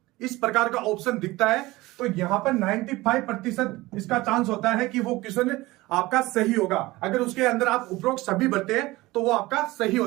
इस प्रकार का ऑप्शन दिखता है तो यहां पर 95% इसका चांस होता है कि वो क्वेश्चन आपका सही होगा। अगर उसके अंदर आप उपरोक्त सभी भरते हैं तो वो आपका सही हो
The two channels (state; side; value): quieter; left; 19.7 dB